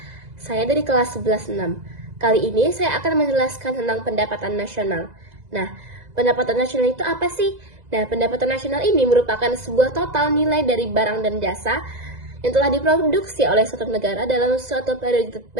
Saya dari kelas 11-6. Kali ini saya akan menjelaskan tentang pendapatan nasional. Nah, pendapatan nasional itu apa sih? Nah, pendapatan nasional ini merupakan sebuah total nilai dari barang dan jasa yang telah diproduksi oleh suatu negara dalam suatu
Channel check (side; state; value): left; late; 2.0 ms